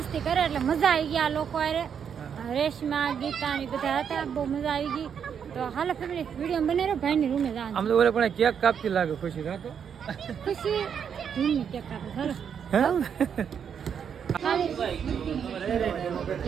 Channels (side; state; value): left; quieter; 7.6 dB